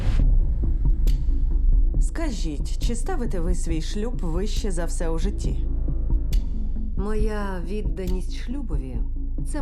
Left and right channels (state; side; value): identical; both; correlation 1.00